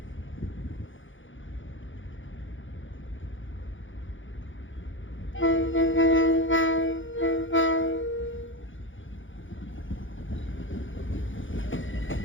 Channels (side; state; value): right; late; 0.56 ms